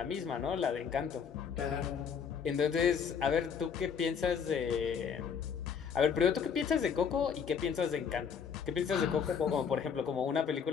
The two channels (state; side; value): quieter; right; 6.9 dB